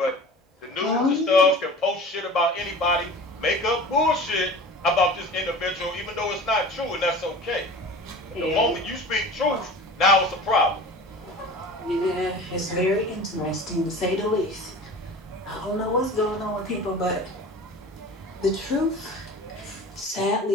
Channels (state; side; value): normal; both; correlation 0.38